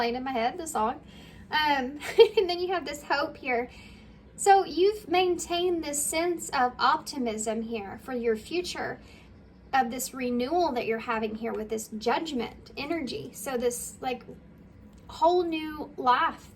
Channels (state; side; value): identical; both; correlation 1.00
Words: in my head, the song. And then you have this hope here. So you've maintained this sense of optimism here for your future, of this renewal that you're having here with this judgment energy. So this like whole new life